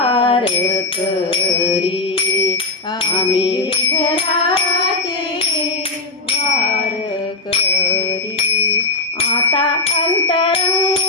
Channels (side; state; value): right; quieter; 3.3 dB